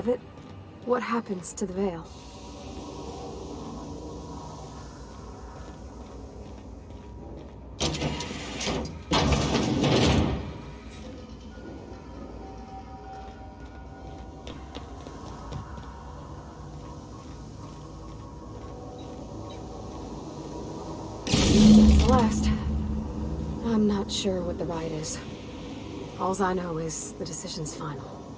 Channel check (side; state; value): both; identical; correlation 1.00